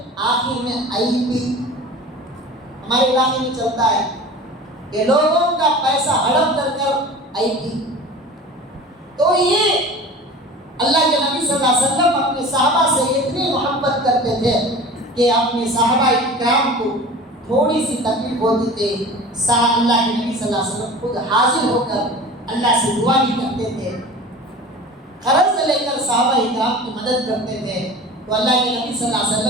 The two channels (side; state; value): both; normal; correlation 0.38